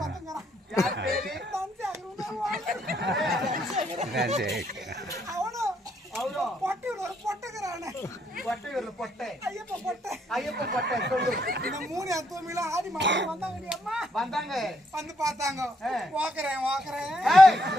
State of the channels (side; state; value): both; normal; correlation 0.74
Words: பத்துங்கிறான் யார் பேரு அவனும் அவரோ பொட்டு ஒரு பொட்டுக்கிறானே பொட்டையூர்ல பொட்டை ஐயப்ப பொட்டை ஐயப்ப பொட்டை சொல்லு இந்த 3 தூமில ஆடி மாடி வந்தாங்க அம்மா வந்தாங்க வந்து பார்த்தாங்க ஓக்குறேன் ஏய்